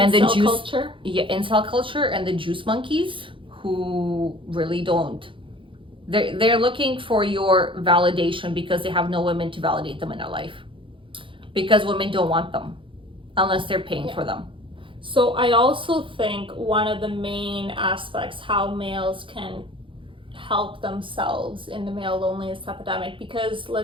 the juice culture. Incel culture and the juice monkeys who really don't. They're looking for your validation because they have no women to validate them in their life. Because women don't want them unless they're paying for them. So I also think one of the main aspects how males can help themselves in the male loneliness epidemic, because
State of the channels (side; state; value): left; late; 0.25 ms